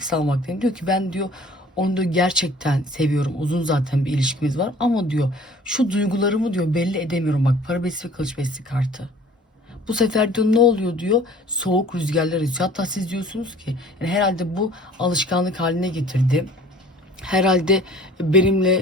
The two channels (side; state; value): both; normal; correlation 0.50